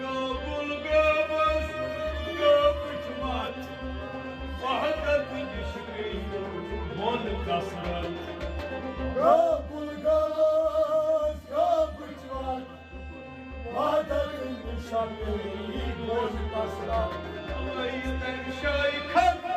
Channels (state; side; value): identical; both; correlation 1.00